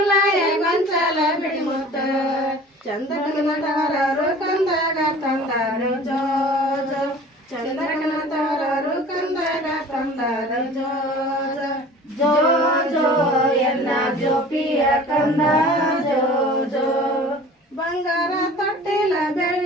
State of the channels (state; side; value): normal; both; correlation 0.44